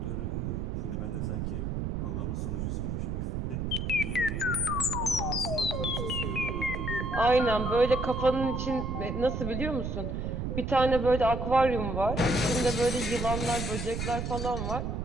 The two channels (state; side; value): noise; right; rumble, 2 dB below the sound